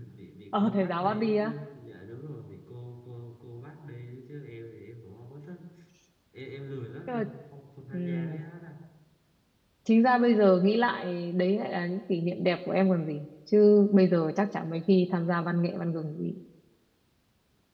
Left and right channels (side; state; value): both; identical; correlation 1.00